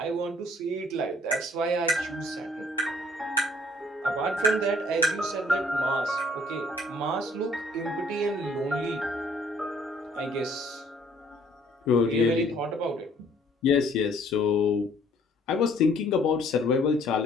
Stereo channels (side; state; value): both; normal; correlation 0.60